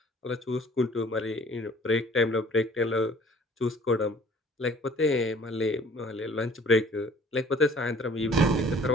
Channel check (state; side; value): normal; both; correlation 0.52